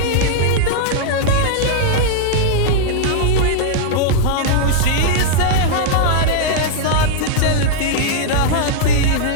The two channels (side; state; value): both; different; correlation -0.01